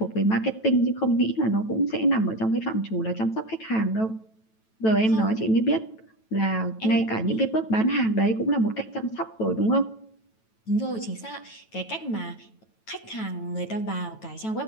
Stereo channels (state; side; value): late; right; 9.1 ms